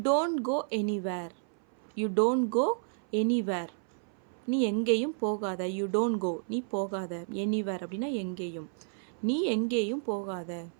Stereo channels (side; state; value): left; silent; 56 dB below the other